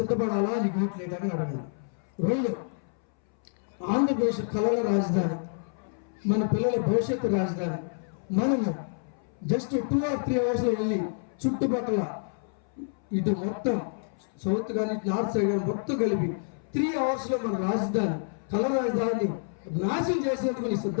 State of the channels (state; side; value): silent; right; 59 dB below the other